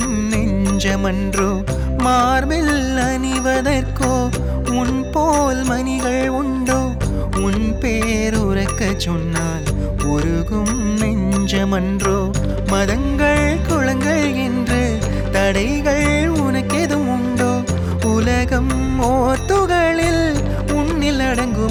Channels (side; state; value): both; identical; correlation 1.00